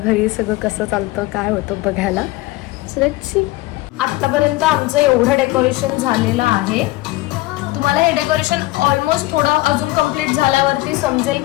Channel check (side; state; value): right; quieter; 19.3 dB